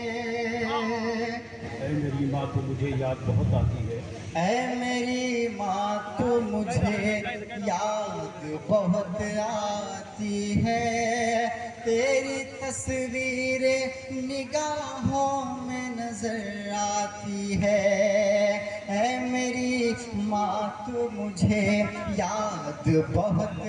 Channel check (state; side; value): identical; both; correlation 1.00